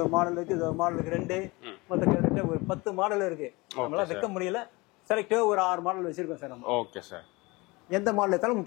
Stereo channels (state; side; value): quieter; right; 24.1 dB